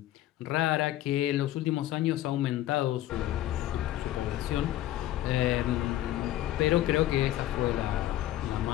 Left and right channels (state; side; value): quieter; right; 14.1 dB